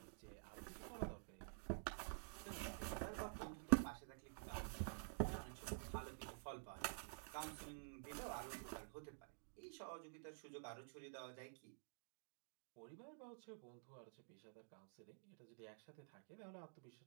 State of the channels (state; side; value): silent; left; digital silence